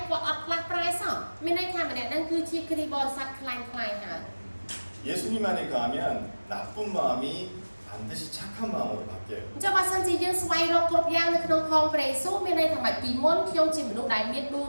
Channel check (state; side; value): inverted; both; correlation -1.00